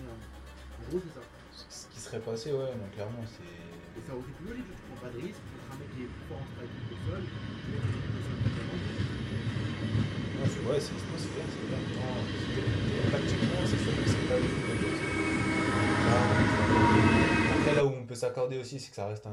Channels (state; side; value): identical; both; correlation 1.00